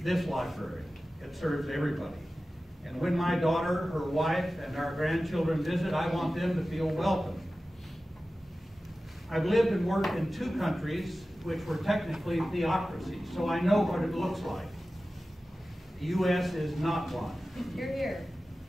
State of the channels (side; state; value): both; normal; correlation 0.95